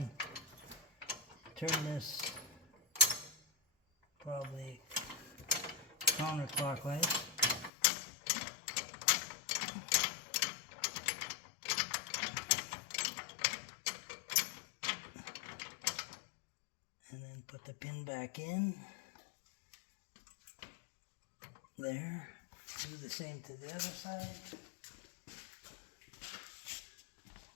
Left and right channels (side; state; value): right; drops out; at 7.7 s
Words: turn this probably counterclockwise. And then put the pin back in. There. Do the same to the other side.